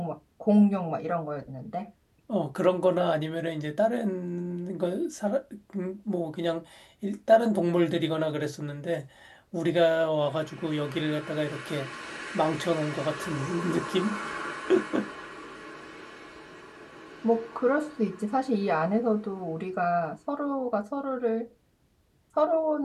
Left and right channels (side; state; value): both; identical; correlation 1.00